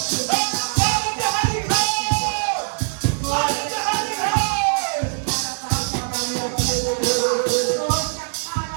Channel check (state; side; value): silent; left; 64 dB below the other